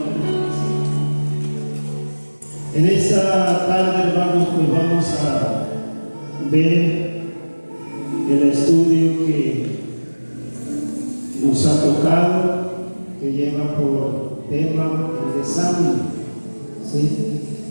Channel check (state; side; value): inverted; both; correlation -1.00